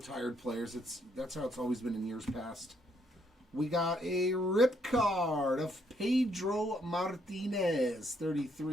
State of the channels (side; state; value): both; normal; correlation 0.72